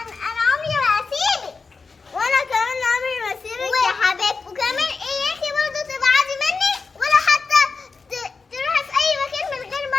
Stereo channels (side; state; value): right; quieter; 4.5 dB